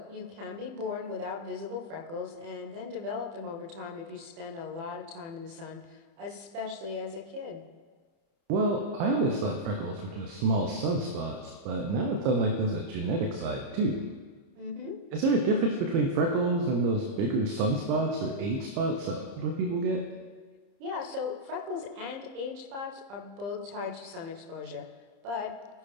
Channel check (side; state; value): left; late; 30 ms